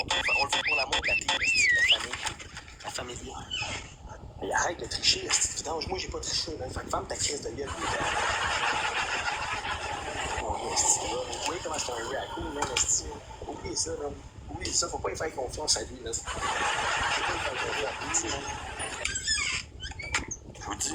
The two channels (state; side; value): identical; both; correlation 1.00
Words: le fait pour l'amour de la team, esti. La famille. Mais arrête de tricher, esti. Vidange, moi, j'ai pas triché, man. Fait que ferme ta crise de gueule. Vous voyez comment c'est un raccoon, man, esti. Oubliez ça, man. Oubliez ça, faut pas y faire confiance à lui, là. Faut pas y faire confiance à lui, man. Je vous dis,